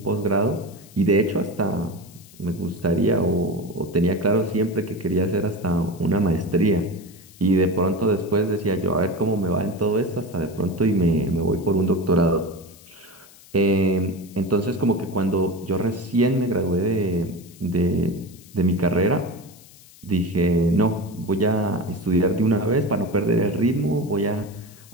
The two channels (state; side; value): noise; left; hiss, 23 dB below the sound